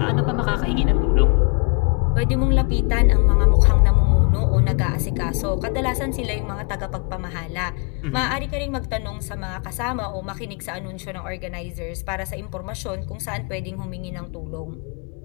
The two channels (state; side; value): quieter; right; 36.9 dB